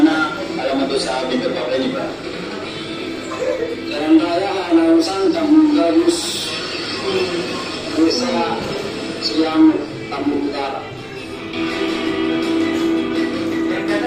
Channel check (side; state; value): both; identical; correlation 1.00